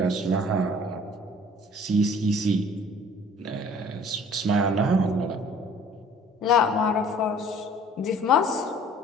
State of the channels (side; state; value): both; normal; correlation 0.52